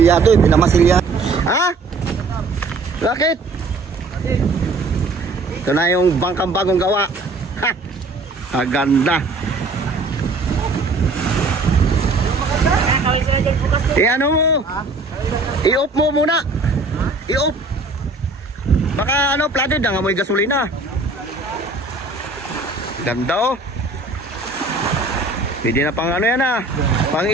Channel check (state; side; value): quieter; left; 3.4 dB